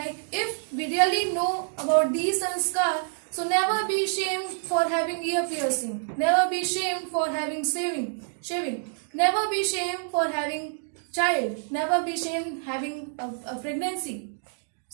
if we really know about these sanskar, so never be ashamed for having ear piercing. Never be ashamed for having shaving. Never be ashamed for having child. Never be ashamed having a pregnancy.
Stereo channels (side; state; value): left; silent; digital silence